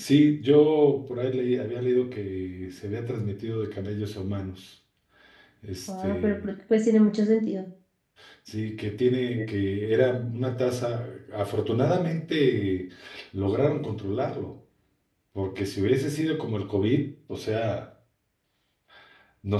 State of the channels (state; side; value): identical; both; correlation 1.00